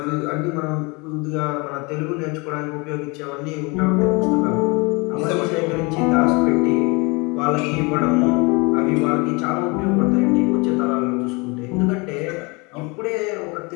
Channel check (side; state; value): right; quieter; 28.0 dB